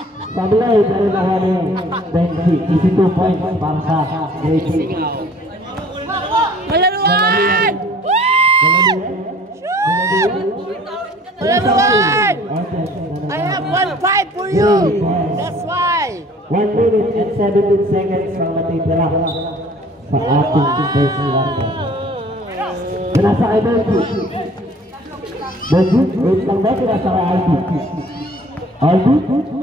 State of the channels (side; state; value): both; normal; correlation 0.52